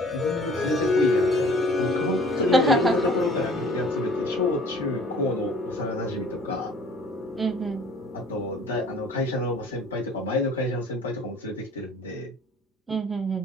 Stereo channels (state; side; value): normal; both; correlation 0.51